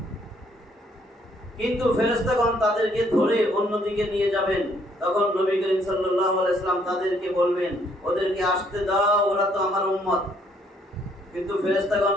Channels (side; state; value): both; normal; correlation 0.67